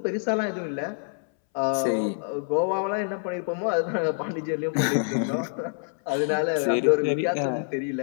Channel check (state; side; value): silent; right; 61 dB below the other